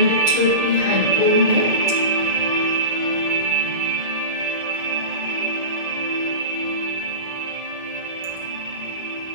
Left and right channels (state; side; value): late; left; 1.7 ms